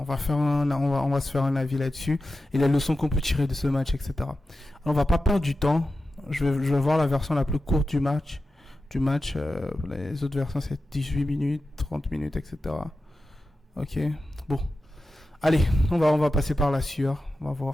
se faire un avis là-dessus et les leçons qu'on peut tirer de ce match, etc. Alors, on va pas perdre du temps. Je vais voir la version la plus courte du match. Les autres versions c'est 18 minutes, 30 minutes, etc. Ok. Bon. Allez, on va passer par la sueur, on va voir.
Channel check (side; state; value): both; normal; correlation 0.92